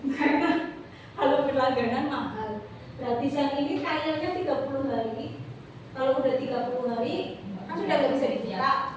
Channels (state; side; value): identical; both; correlation 1.00